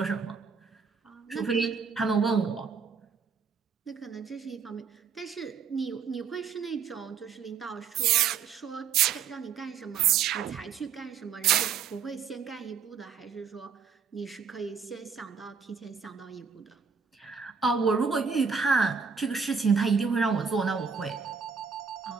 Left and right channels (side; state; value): left; quieter; 6.2 dB